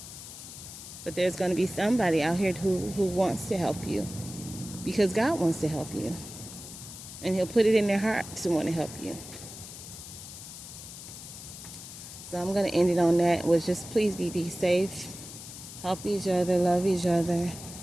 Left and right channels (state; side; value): noise; left; hiss, 13 dB below the sound